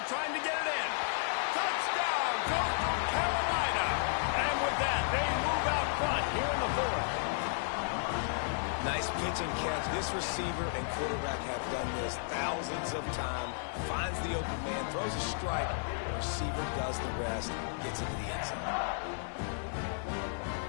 trying to get it in. Touchdown, Coastal Carolina. And with that, they move out front here in the fourth. Nice pitch and catch. This receiver and quarterback have done this thousands of times. Finds the open man, throws a strike. The receiver does the rest, gets into the end zone.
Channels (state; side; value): silent; right; 55 dB below the other